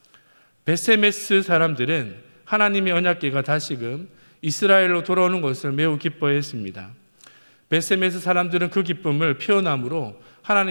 벳세메스 사람들은 하나님의 언약궤가 다시금 이스라엘로 돌아오는 것을 매우 기뻐했습니다. 벳세메스 사람들은 그 기쁨을 표현함으로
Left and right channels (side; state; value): both; inverted; correlation -1.00